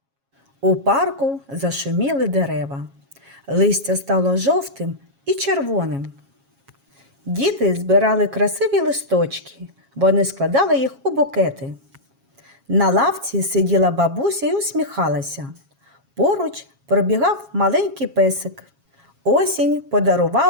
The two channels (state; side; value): late; left; 7.3 ms